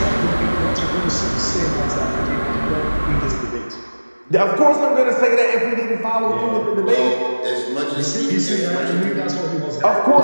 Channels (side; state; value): both; inverted; correlation -1.00